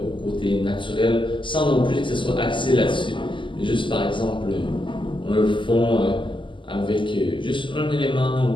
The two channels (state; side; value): late; right; 0.24 ms